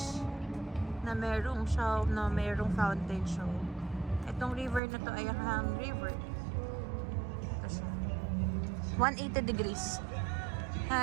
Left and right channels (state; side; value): drops out; left; at 4.8 s